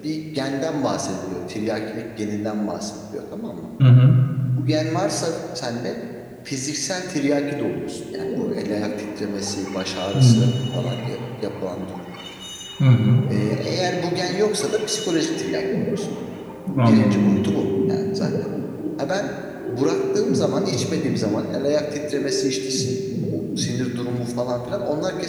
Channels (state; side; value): identical; both; correlation 1.00